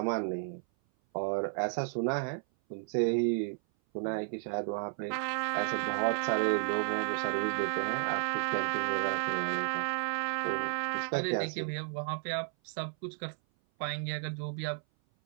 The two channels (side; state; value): left; silent; 56 dB below the other